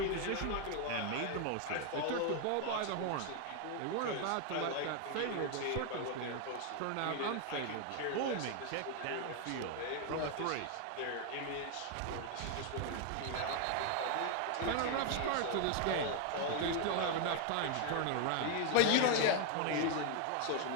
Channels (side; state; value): both; different; correlation 0.01